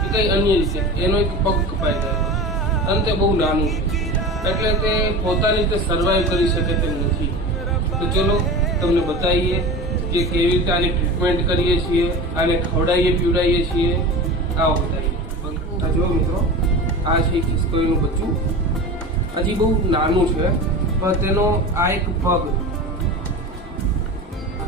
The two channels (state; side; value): normal; both; correlation 0.31